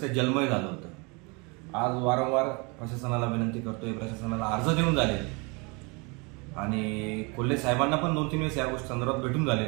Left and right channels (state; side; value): quieter; left; 30.1 dB